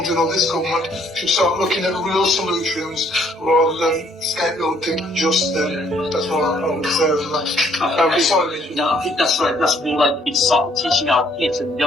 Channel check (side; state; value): both; normal; correlation 0.64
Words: in, or this government, should start looking at real solutions rather than scapegoating just them. That's what I would say. No, I think that's right. That's more like we start teaching our kids and